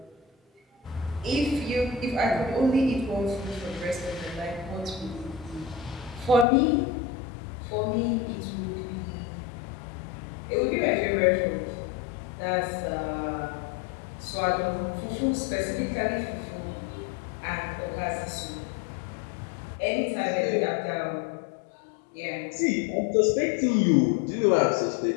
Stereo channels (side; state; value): right; drops out; at 6.5 s